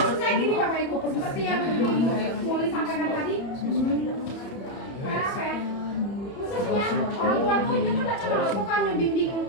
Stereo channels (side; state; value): right; late; 30 ms